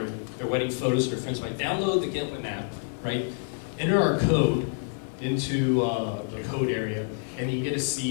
wedding photos with their friends, might download the Get Hsin app, right? Enter our code into the code area, and you get to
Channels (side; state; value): right; silent; 60 dB below the other